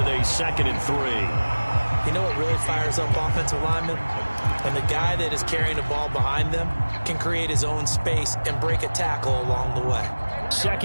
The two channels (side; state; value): both; inverted; correlation -1.00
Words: a 2nd and 3. You know what really fires up offensive linemen? When the guy that is carrying the ball behind them can create his own space and break a tackle along the way.